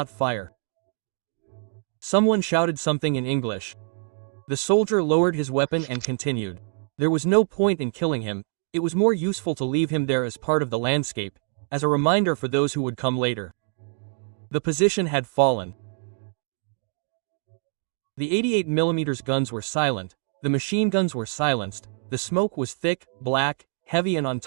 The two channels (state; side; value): silent; left; 56 dB below the other